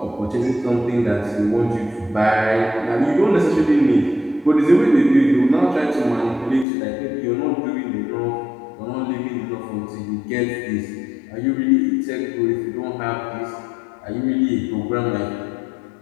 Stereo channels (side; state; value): right; drops out; at 6.7 s